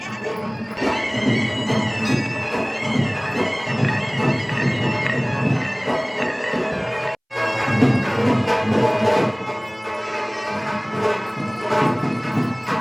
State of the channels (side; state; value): both; identical; correlation 1.00